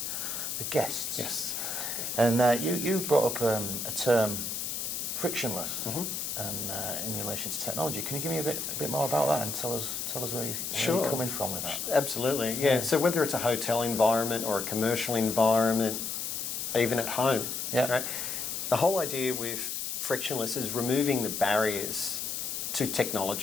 guests. Yes. And you brought up a term, frictionless, and in relation to technology. Can you give me a bit more about that and tell us where you're coming from with that? Absolutely. Yeah. So whether it's a hotel environment or a commercial environment, even at home, right? The whole idea with frictionless is removing the barriers to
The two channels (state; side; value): noise; left; hiss, 3 dB below the sound